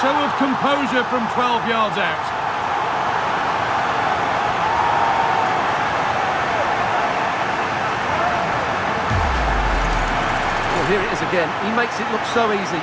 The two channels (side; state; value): both; identical; correlation 1.00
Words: of composure from 12 yards out. Well, here it is again. He makes it look so easy.